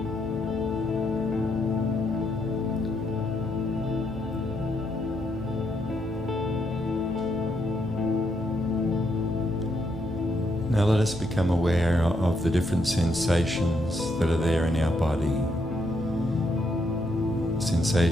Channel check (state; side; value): normal; both; correlation 0.77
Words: Now let us become aware of the different sensations that are there in our body.